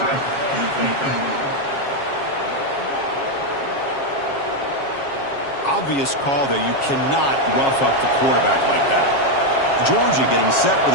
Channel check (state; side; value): late; right; 7.3 ms